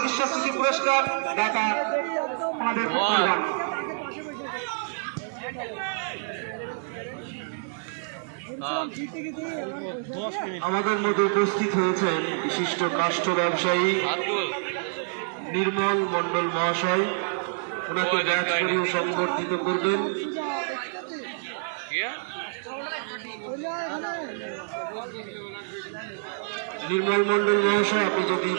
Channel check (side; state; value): left; silent; digital silence